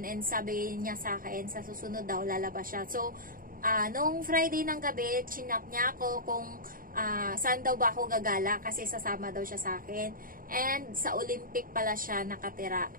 and sabi niya sa akin, sa susunod daw lalabas siya. So, nung Friday ng gabi, chinap niya ako kung saan daw ba ako gagala kasi sasama daw siya sa akin. And sa Olympic pala siya nakatira.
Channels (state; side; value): late; left; 0.41 ms